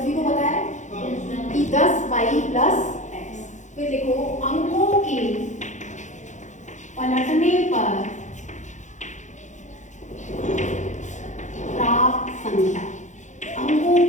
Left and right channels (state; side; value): late; right; 0.35 ms